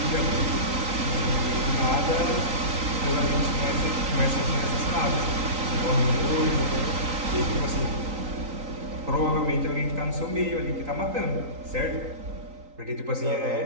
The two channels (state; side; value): late; left; 3.9 ms